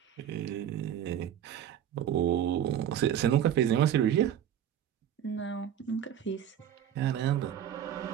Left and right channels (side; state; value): left; quieter; 10.1 dB